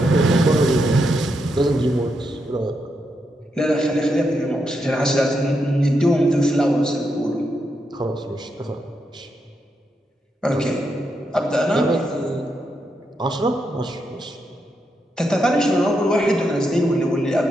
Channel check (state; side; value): normal; both; correlation 0.83